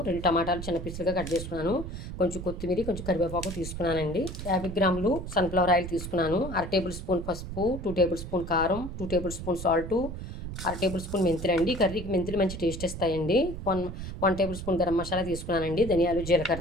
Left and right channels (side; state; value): right; noise; rumble, 8 dB below the sound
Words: 2 టమాటాలు చిన్న పీసులుగా కట్ చేసుకున్నాను. కొంచెం కొత్తిమీర, కొంచెం కరివేపాకు తీసుకున్నానండి. 50 గ్రాములు సన్ఫ్లవర్ ఆయిల్ తీసుకున్నాను. 1/2 టేబుల్ స్పూన్ పసుపు, 2 టేబుల్ స్పూన్ కారం, 2 table spoon salt, 1/2 table spoon మెంతులు అండి. కర్రీకి మెంతులు మంచి టేస్ట్ ఇస్తాయండి. 1 టేబుల్ స్పూన్ గరం మసాలా తీసుకున్నానండి. ధనియాలు,